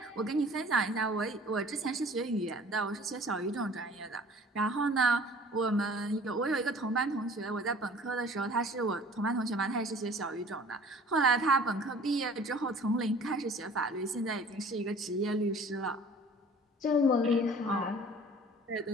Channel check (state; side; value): normal; both; correlation 0.49